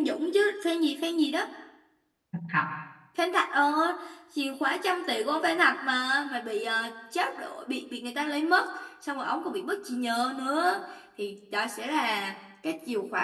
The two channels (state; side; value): identical; both; correlation 1.00